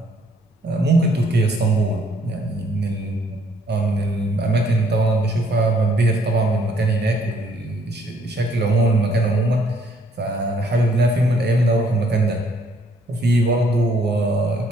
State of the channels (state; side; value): normal; both; correlation 0.65